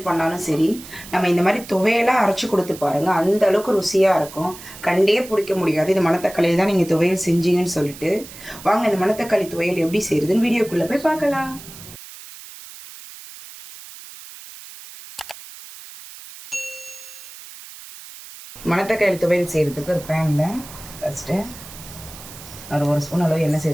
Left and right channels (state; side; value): noise; right; hiss, 16 dB below the sound